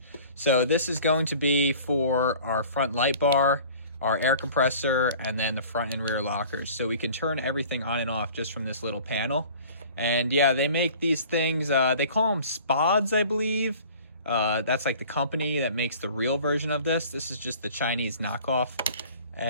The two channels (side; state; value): both; inverted; correlation -0.46